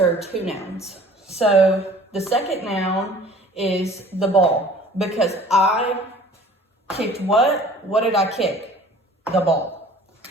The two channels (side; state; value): both; normal; correlation 0.49